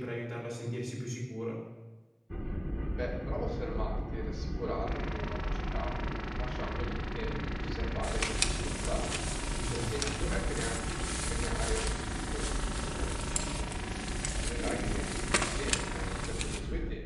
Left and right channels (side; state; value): both; identical; correlation 1.00